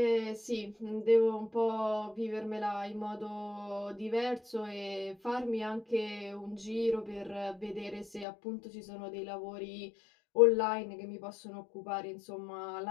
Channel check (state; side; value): drops out; right; at 8.2 s